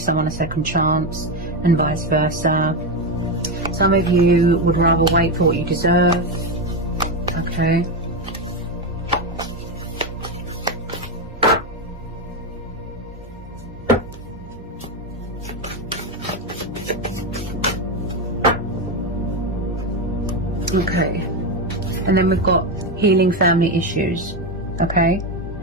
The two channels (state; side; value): normal; both; correlation 0.11